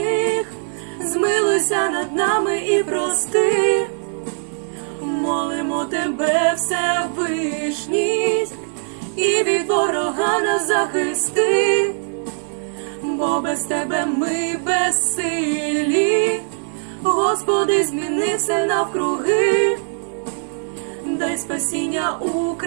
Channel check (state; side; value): silent; left; digital silence